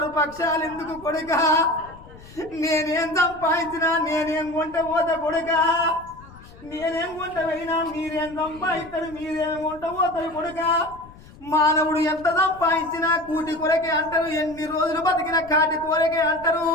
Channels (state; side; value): noise; left; rumble, 21 dB below the sound